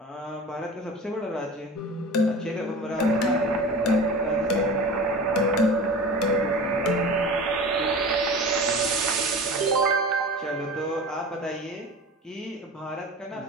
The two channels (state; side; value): normal; both; correlation 0.34